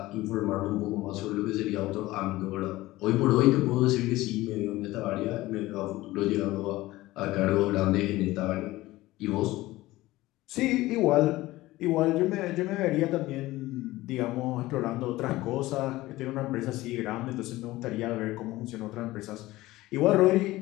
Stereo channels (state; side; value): quieter; right; 18.0 dB